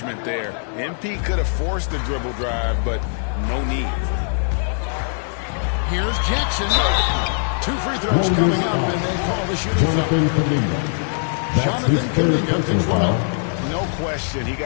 there. MP could have forced the dribble drive, but no need. Here's Jackson. 2 free throws coming up, and they call the shooting foul. Jonathan Kuminga. That's his third personal foul. No question, he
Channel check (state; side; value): silent; right; 65 dB below the other